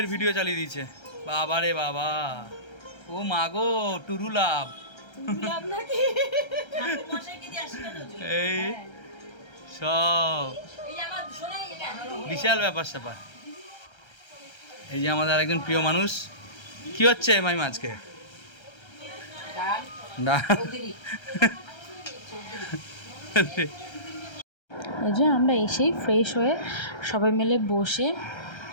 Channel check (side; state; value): right; late; 1.3 ms